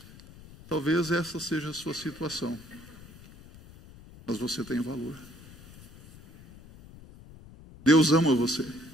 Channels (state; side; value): noise; left; rumble, 20 dB below the sound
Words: Talvez essa seja a sua situação, mas você tem valor. Deus ama você.